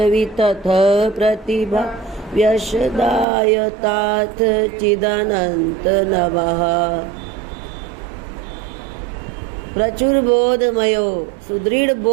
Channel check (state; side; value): drops out; left; at 3.2 s